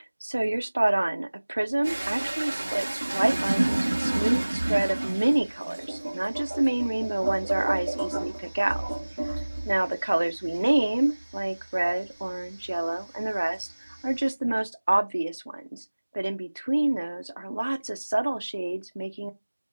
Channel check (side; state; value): both; inverted; correlation -1.00